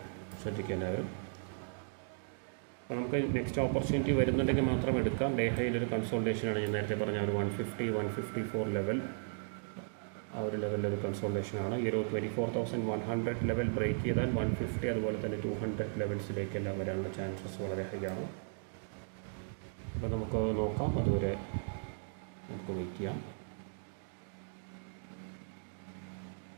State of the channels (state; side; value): silent; left; digital silence